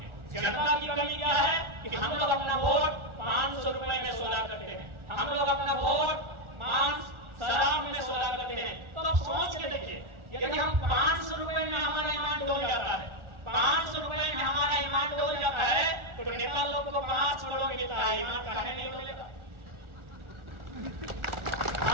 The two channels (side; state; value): left; late; 1.4 ms